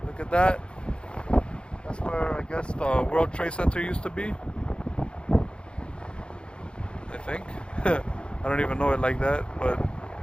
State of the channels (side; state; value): right; late; 0.054 ms